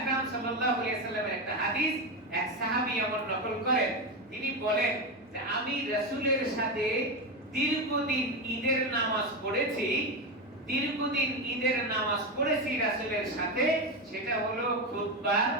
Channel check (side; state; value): both; normal; correlation 0.14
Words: সাল্লাল্লাহু আলাইহি ওয়াসাল্লামের একটা হাদিস এক সাহাবী এমন নকল করেন, তিনি বলেন যে আমি রাসূলের সাথে দীর্ঘদিন ঈদের নামাজ পড়েছি, দীর্ঘদিন ঈদের নামাজ পড়েছি রাসূলের সাথে, সেটা হলো খুতবার